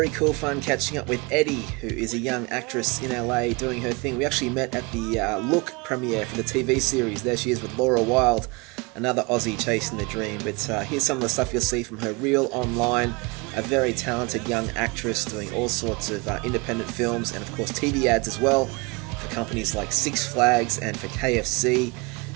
cool fun catching up with Eddie, who is a young actress in LA doing her thing. We actually met at the Look premiere for the TV series. There she is with Laura Wilde, another Aussie chasing the dream. But here's some of the stuff you'll see from her reel online. A very talented young actress doing all sorts of independent films and of course TV ads as well for companies like Six Flags and for KFC.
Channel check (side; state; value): left; quieter; 27.7 dB